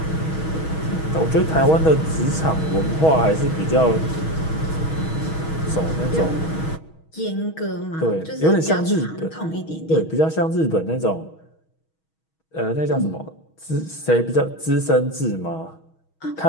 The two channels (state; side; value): late; right; 6.3 ms